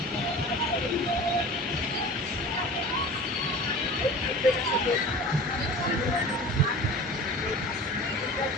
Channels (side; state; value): both; normal; correlation 0.38